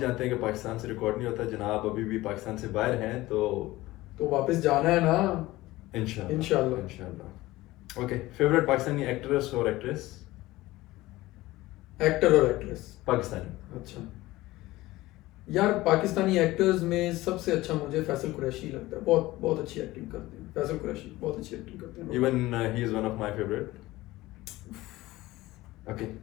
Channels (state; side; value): quieter; right; 18.2 dB